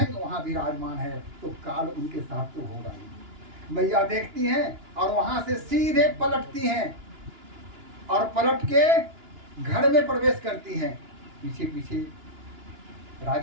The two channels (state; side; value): late; left; 2.9 ms